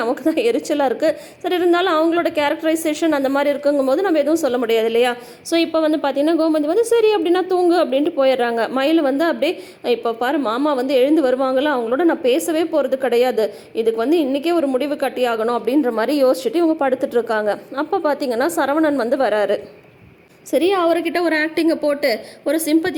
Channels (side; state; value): both; identical; correlation 1.00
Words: நமக்கு தான் எரிச்சலாக இருக்குது. சரி இருந்தாலும் அவங்களோட கேரக்டரைசேஷன் அந்த மாதிரி இருக்குங்கும் போது நம்ம எதுவும் சொல்ல முடியாது இல்லையா. ஸோ இப்போ வந்து பார்த்திங்கன்னா கோமதி வந்து சரி அப்படின்னா தூங்கு அப்படின்ட்டு போயிடுறாங்க. மயில் வந்து அப்படியே இப்போ பாரு மாமா வந்து எழுந்து வருவாங்களா, அவங்களோட நான் நான் பேசவே போகிறது கிடையாது, இதுக்கு வந்து இன்றைக்கே ஒரு முடிவு கட்டியாகணும் அப்படின்ற மாதிரி யோசிச்சுட்டு இவங்க படுத்துட்டு இருக்காங்க. அப்போ பார்த்தீங்கன்னா சரவணன் வந்து வராரு. சரி, அவர்கிட்ட ஒரு ஆக்டிங்கை போட்டு ஒரு